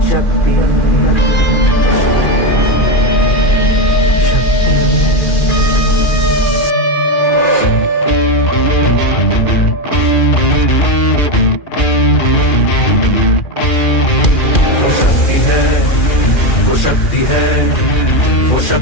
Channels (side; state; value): right; late; 2.4 ms